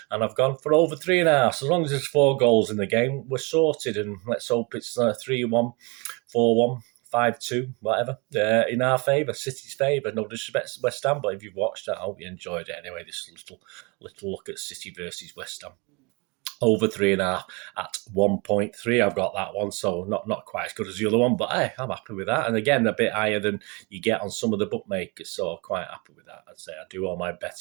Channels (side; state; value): left; quieter; 29.1 dB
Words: And I've gone for over 3.5. So as long as there's 4 goals in the game, we're sorted. And let's hope it's 3-1, 4-1. 5-2, whatever, in our favour, City's favour. No disrespect to West Ham, but if you've watched that, I hope you enjoyed it anyway. This little look at City versus West Ham. Over 3.5 at 1.3. I've got that one, so not quite as good as the other one, but hey, I'm happy with that. And again, a bit higher than you get on some of the bookmakers, so I'm quite happy with that. I'd say I do all my